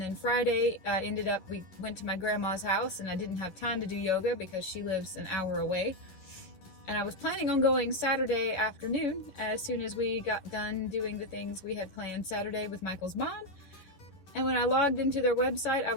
then Friday we went to my grandma's house, and I didn't have time to do yoga because she lives an hour away. And I was planning on going Saturday afternoon as soon as we got done doing the things we had planned Saturday with Michael's mom. And when I logged into their website, I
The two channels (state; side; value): late; right; 11 ms